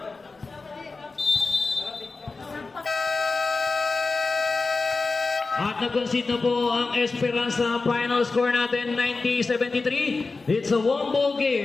At nag-concede na po ang Esperanza. Final score natin 90-73. It's a one-ball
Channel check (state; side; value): quieter; right; 3.9 dB